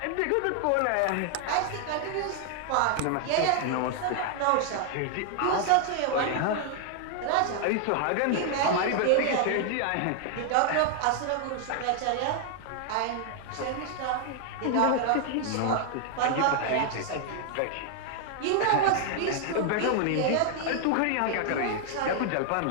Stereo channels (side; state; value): both; different; correlation 0.00